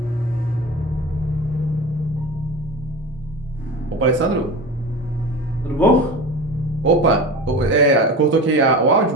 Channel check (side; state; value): both; normal; correlation 0.31